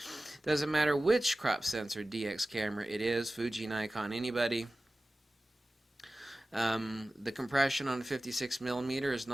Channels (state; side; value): normal; both; correlation 0.96